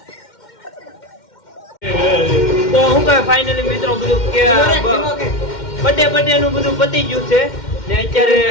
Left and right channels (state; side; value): late; right; 2.1 ms